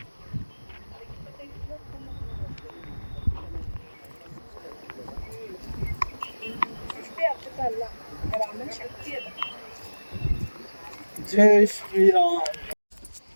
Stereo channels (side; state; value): both; inverted; correlation -1.00